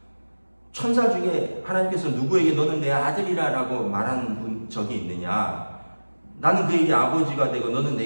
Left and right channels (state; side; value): inverted; both; correlation -1.00